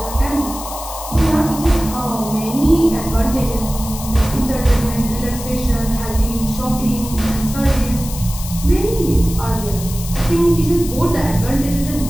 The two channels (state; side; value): noise; left; hiss, 11 dB below the sound